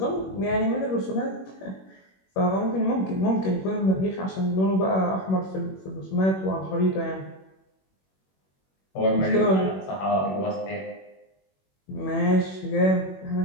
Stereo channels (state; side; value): late; right; 21 ms